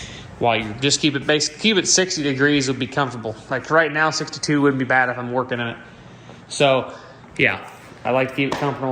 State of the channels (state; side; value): identical; both; correlation 1.00